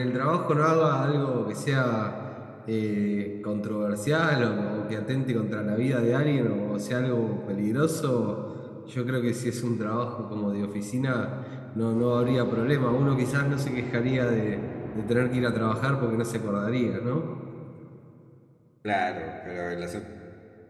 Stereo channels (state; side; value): identical; both; correlation 1.00